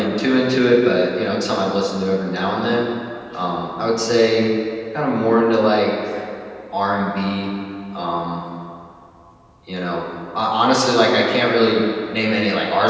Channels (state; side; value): identical; both; correlation 1.00